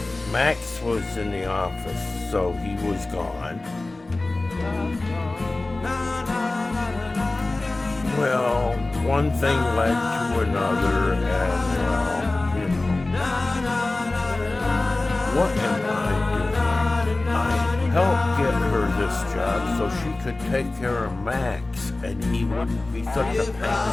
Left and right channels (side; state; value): right; quieter; 3.0 dB